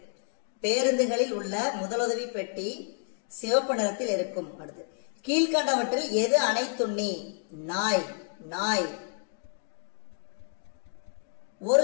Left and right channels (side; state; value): right; silent; 58 dB below the other